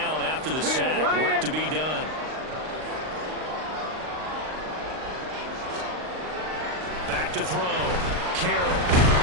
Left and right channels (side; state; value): left; late; 39 ms